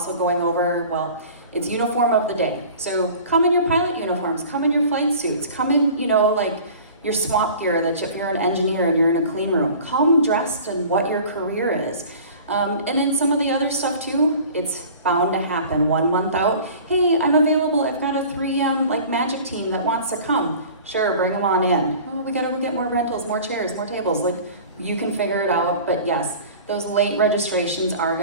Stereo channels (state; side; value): inverted; both; correlation -0.43